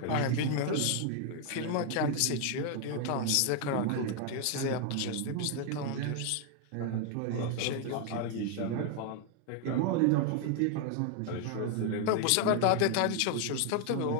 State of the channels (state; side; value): different; both; correlation 0.00